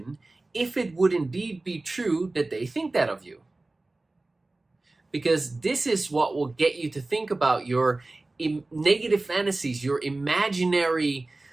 if it would indeed be true that they think that of you? Because this is what will get you to think about your negative fantasies, your imaginary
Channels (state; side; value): quieter; left; 3.0 dB